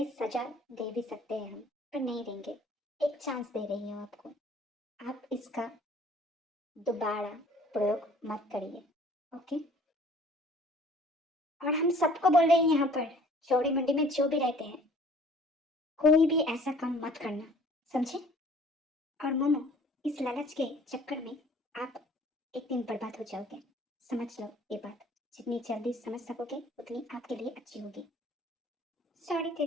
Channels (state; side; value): normal; both; correlation 0.53